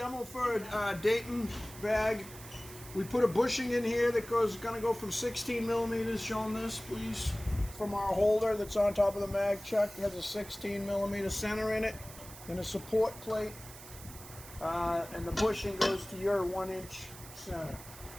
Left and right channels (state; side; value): noise; right; hiss, 16 dB below the sound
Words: for a Dayton bag. We put a bushing in here that gonna go from 16 millimeters, showing this please, from our holder that's on top of the mag chuck. It has a 16 millimeter center in it and a support plate. And the bushing goes to your 1-inch center.